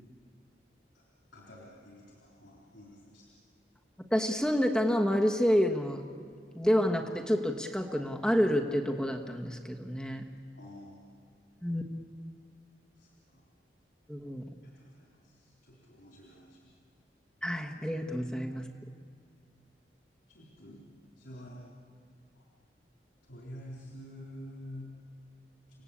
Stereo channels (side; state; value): both; normal; correlation 0.91